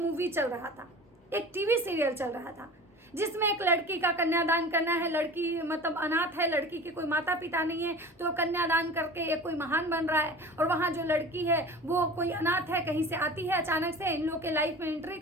चल रहा था, एक टीवी सीरियल चल रहा था, जिसमें एक लड़की का कन्यादान करना है। लड़की मतलब अनाथ है, लड़की के कोई माता पिता नहीं है, तो कन्यादान करके एक कोई महान बन रहा है। और वहाँ जो लड़की है वो कोई अनाथ है, कहीं से आती है, अचानक से इन लोग के लाइफ में एंट्री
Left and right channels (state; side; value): normal; both; correlation 0.38